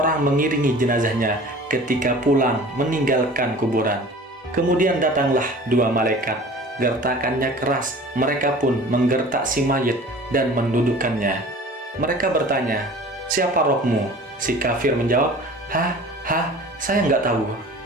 mengiringi jenazahnya ketika pulang meninggalkan kuburan. Kemudian datanglah dua malaikat, gertakannya keras, mereka pun menggertak si mayit dan mendudukkannya. Mereka bertanya, siapa rohmu? Si kafir menjawab, saya nggak tahu.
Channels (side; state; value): both; normal; correlation 0.43